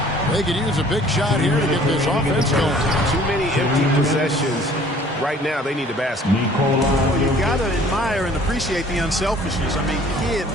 They could use a big shot here to get this offense going. Too many empty possessions. Right now, they need a basket. Well, you got to admire and appreciate the unselfishness. I mean, kid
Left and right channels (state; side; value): normal; both; correlation 0.54